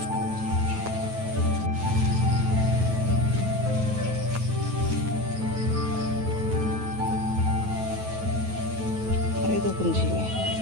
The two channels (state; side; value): late; left; 9.3 ms